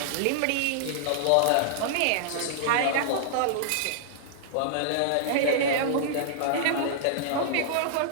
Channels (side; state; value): both; different; correlation -0.01